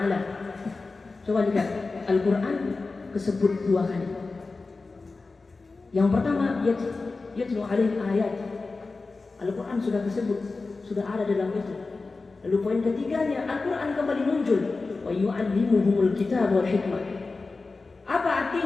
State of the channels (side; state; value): right; quieter; 3.8 dB